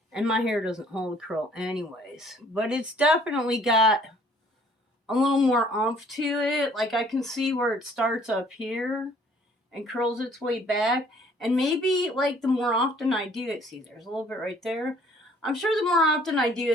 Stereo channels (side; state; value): both; normal; correlation 0.58